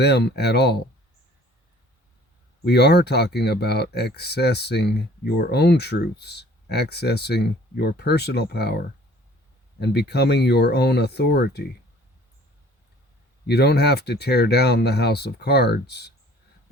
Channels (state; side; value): normal; both; correlation 0.52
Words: at all. We are talking about accessing your own truths, accessing your personal power, and becoming your own authority. You don't have to tear down the house of cards.